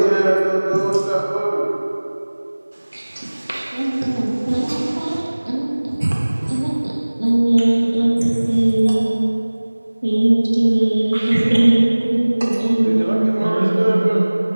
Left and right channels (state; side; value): inverted; both; correlation -1.00